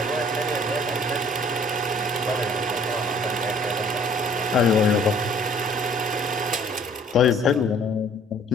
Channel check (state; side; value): normal; both; correlation 0.56